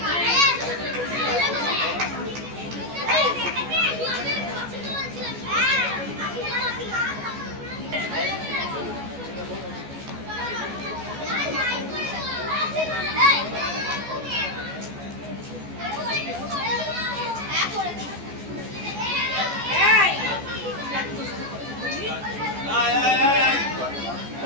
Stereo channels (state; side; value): late; left; 14 ms